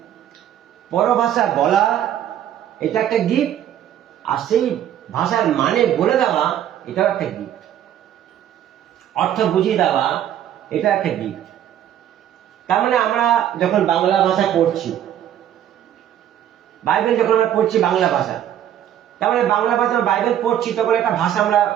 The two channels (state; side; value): quieter; left; 10.8 dB